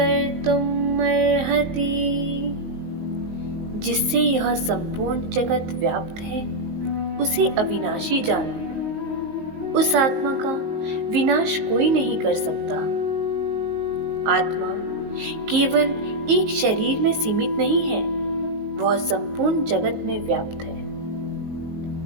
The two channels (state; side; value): late; left; 19 ms